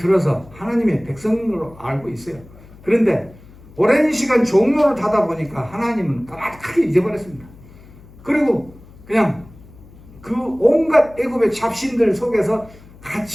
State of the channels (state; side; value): noise; left; hum, 22 dB below the sound